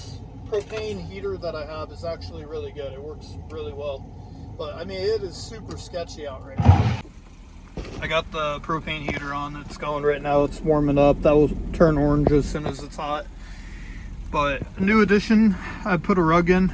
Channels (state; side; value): identical; both; correlation 1.00